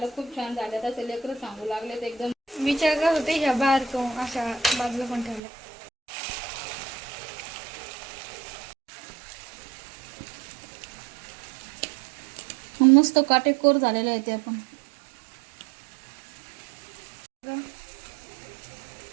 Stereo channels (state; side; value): drops out; left; at 5.4 s